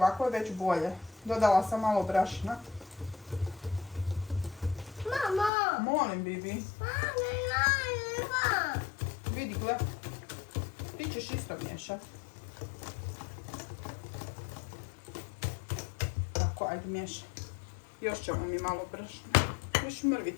je već bolje. Dodala sam malo brašna. Mama. Molim, Bibi. Mama. Vidi, gle. Ti ćeš isto miješat. Tako, ajde miješaj. Još ćemo mi malo brašna. Još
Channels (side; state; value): right; drops out; at 5.5 s